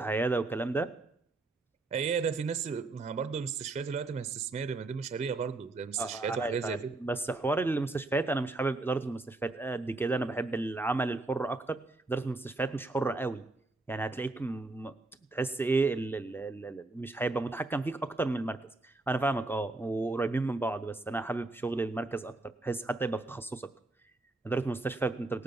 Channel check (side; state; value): left; quieter; 3.1 dB